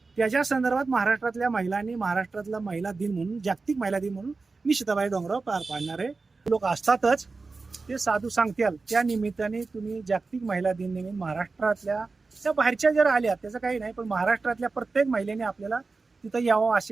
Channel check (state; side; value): quieter; left; 4.0 dB